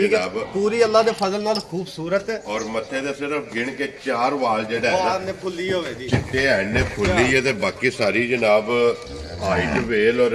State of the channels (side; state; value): both; identical; correlation 1.00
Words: ਜਨਾਬ ਪੂਰੀ ਅੱਲਾ ਦੇ ਫਜ਼ਲ ਨਾਲ ਖੂਬਸੂਰਤ ਔਰ ਮੱਥੇ ਦੇ ਸਿਰਫ ਗਿਣ ਕੇ 4 ਵਾਲ ਜਿਹੜਾ ਹੈ ਨੇ ਫੁੱਲੀ ਹੋਵੇ ਦੀ ਚਿੱਟੇ ਐਨੇ ਫੁੱਲੀ ਹੈ ਤੇ ਬਾਕੀ ਸਾਰੀ ਜਨਾਬ ਹਾਈਟ ਵੇਲ